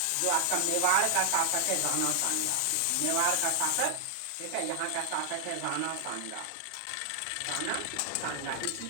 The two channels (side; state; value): both; different; correlation 0.00